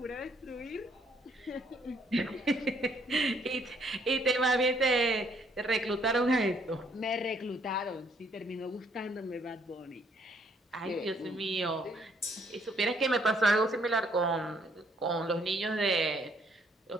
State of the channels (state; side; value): normal; both; correlation 0.66